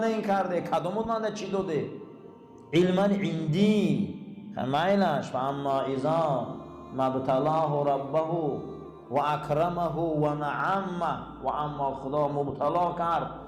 این کرده؟ کدوم بود من چی داده؟ علما عندی خمایلش فاما اذا مبتلاه ربه و اکرمه و نعمه و اما خدا مبتلا کرد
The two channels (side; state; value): both; identical; correlation 1.00